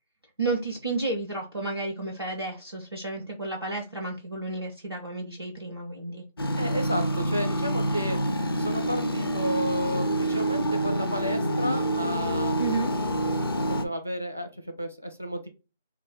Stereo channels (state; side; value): inverted; both; correlation -0.70